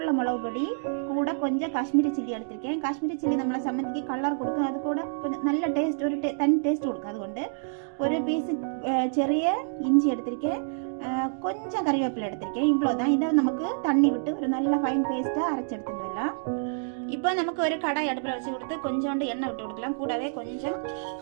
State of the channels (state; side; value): silent; left; digital silence